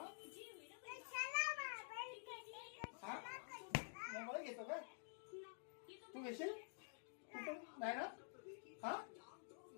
हा मोबाईल घेतो काय तू? घेशील कुठून? नाही ना. हा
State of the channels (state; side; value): silent; right; digital silence